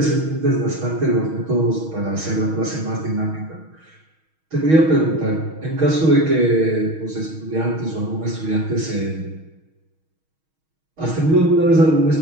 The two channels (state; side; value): late; left; 6.3 ms